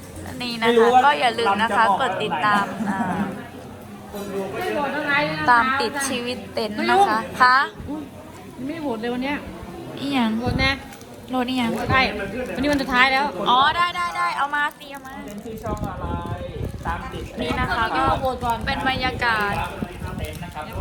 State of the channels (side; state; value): both; identical; correlation 1.00